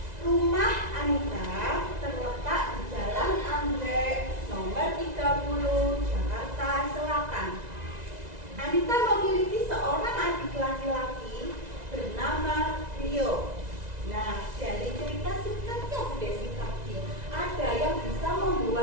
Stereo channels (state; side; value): late; left; 1.9 ms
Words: Rumah Anita terletak di Jalan Anggrek nomor 30 Jakarta Selatan. Anita memiliki seorang adik laki-laki bernama Rio. Nah, dari cerita singkatnya Bu Desi tadi, ada yang bisa